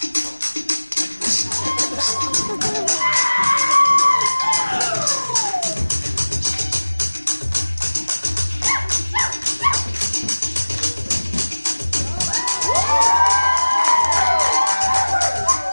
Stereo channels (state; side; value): inverted; both; correlation -1.00